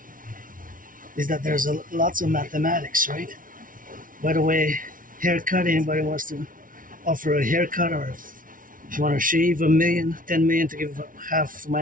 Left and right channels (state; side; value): late; left; 0.39 ms